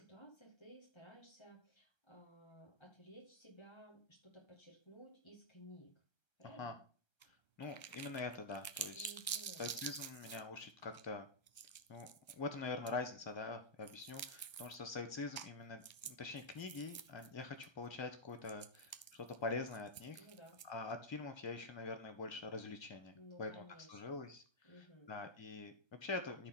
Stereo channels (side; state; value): right; late; 1.3 ms